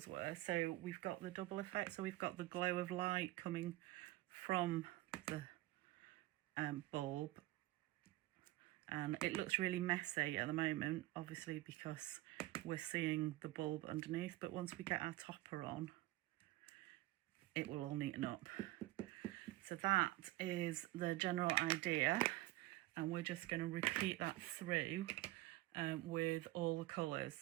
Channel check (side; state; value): left; quieter; 18.1 dB